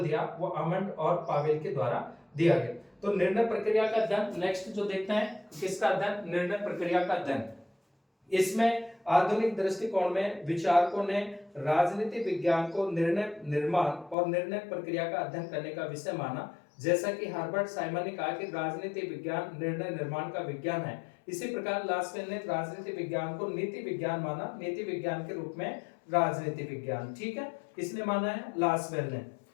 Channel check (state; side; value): drops out; right; at 14.2 s